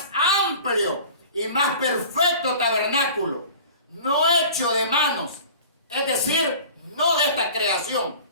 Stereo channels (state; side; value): inverted; both; correlation -0.41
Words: amplio y más perfecto tabernáculo, no hecho de manos, es decir, no de esta creación,